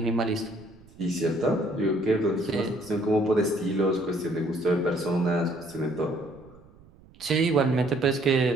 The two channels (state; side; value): noise; right; rumble, 25 dB below the sound